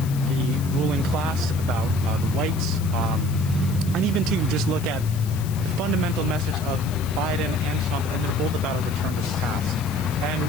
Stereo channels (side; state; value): left; noise; hiss, 15 dB below the sound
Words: ruling class, about whites, and even to just look at the fundamental message of Biden and Trump, and they're both about a return to the past.